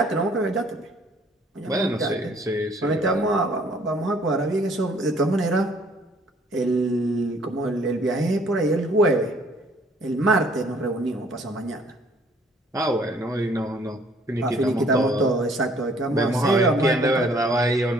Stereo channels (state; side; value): normal; both; correlation 0.59